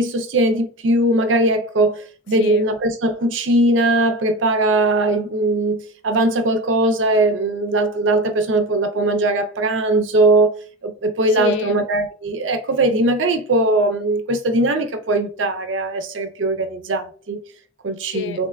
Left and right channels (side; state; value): both; normal; correlation 0.24